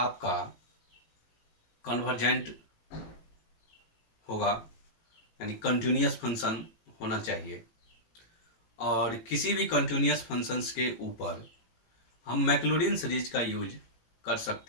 कन्वर्जेंट होगा, यानी कंटिन्यूअस फंक्शन होना चाहिए। और किसी भी कंटिन्यूअस फंक्शंस के ऊपर हम मैक्लॉरिन सीरीज का यूज कर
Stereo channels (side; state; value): right; late; 18 ms